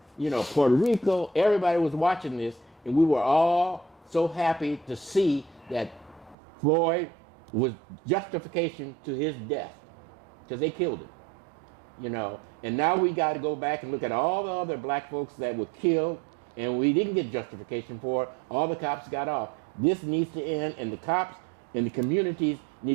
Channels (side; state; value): left; drops out; at 6.4 s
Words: Puerto Rico. Everybody was watching this, and we were all so happy to see that Floyd was justification to his death, because they killed him, And now we got to go back and look at all the other black folks that were killed, and we didn't get justification for it. All the cops got off. This needs to end, and the cops and the communities